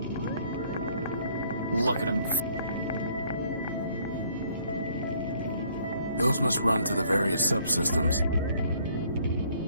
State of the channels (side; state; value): both; inverted; correlation -0.62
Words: Look at him. Those must run to the various subsystems.